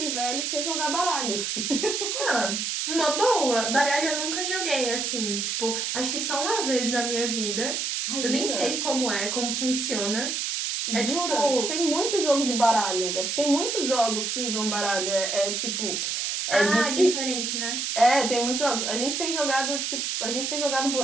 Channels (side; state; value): right; noise; hiss, 1 dB below the sound